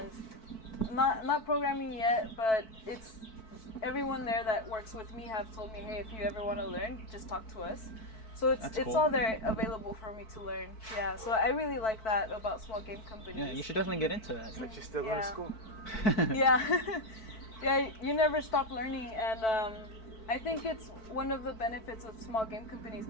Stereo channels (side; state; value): right; late; 4.6 ms